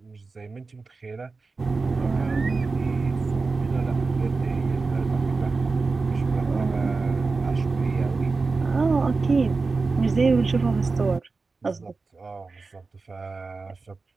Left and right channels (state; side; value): quieter; left; 4.1 dB